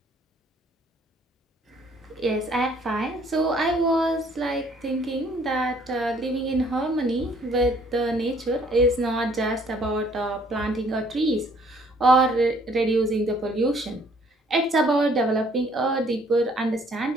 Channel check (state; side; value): normal; both; correlation 0.61